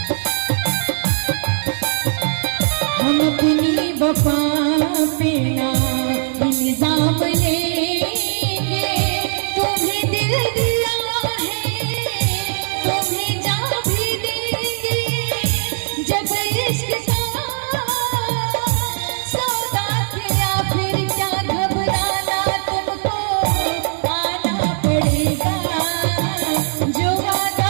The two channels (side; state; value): left; silent; 60 dB below the other